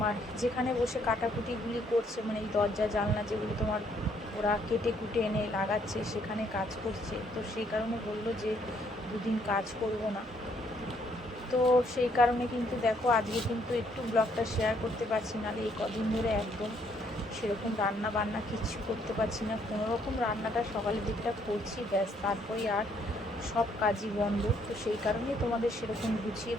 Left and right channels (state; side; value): normal; both; correlation 0.68